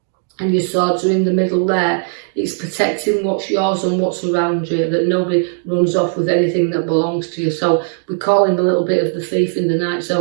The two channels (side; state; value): left; silent; digital silence